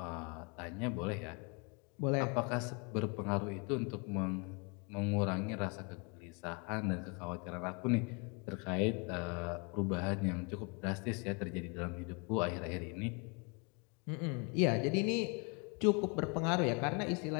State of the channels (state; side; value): quieter; right; 33.5 dB